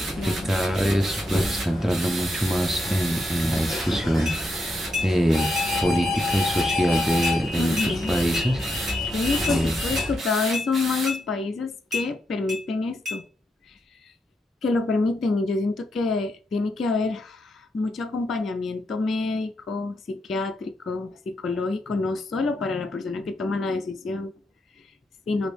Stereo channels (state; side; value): normal; both; correlation 0.82